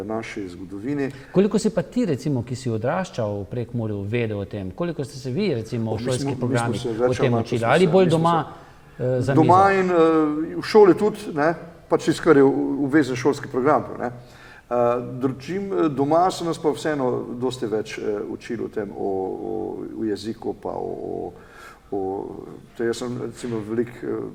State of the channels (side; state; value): both; identical; correlation 1.00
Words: naši zgodovini. Koliko si pa ti, recimo, ki si odraščal v Prekmurju, vedel o tem? Koliko ste se vi, recimo, v šolskih programih o tem učili? Ali bolj doma za mizo? Doma in v šoli tudi, ne, pač tisto, kar je obvezen šolski program, ne. Doma so nas pa vseeno dosti več učili o tem, o jeziku, pa jaz sem recimo veliko